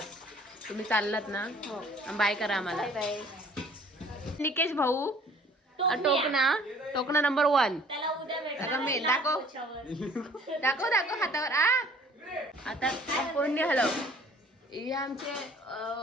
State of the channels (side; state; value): both; normal; correlation 0.54